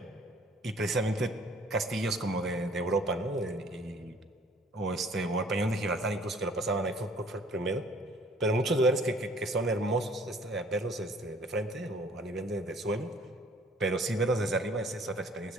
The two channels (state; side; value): normal; both; correlation 0.56